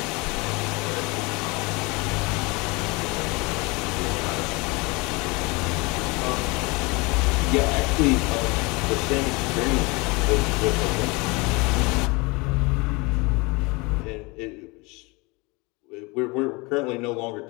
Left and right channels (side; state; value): right; quieter; 26.3 dB